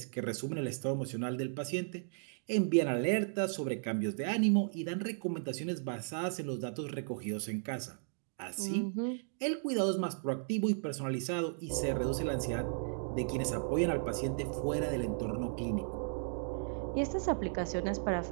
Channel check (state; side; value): silent; left; digital silence